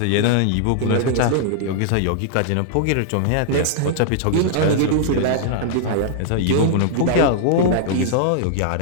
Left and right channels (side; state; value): both; different; correlation -0.01